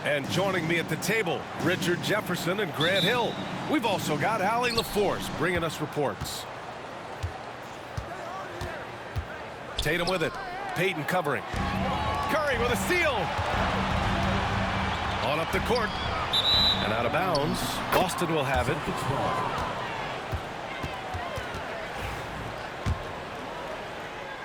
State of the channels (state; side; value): identical; both; correlation 1.00